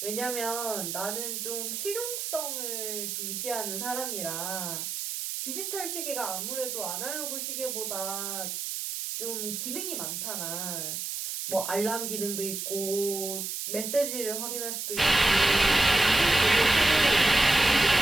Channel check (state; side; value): noise; right; hiss, 4 dB below the sound